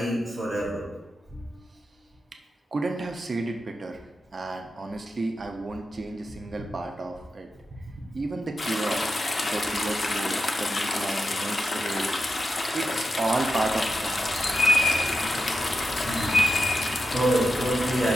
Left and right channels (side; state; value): both; normal; correlation 0.88